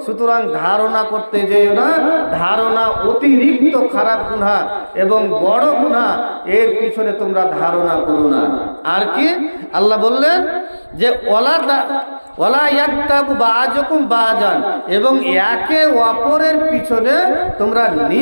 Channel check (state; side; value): inverted; both; correlation -1.00